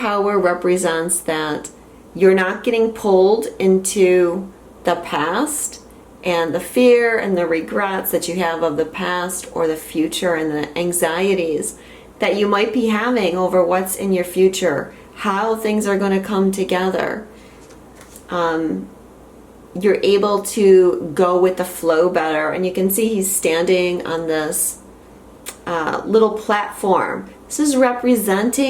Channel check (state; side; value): identical; both; correlation 1.00